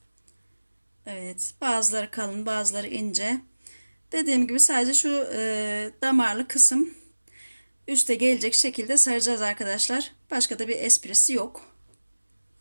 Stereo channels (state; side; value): inverted; both; correlation -1.00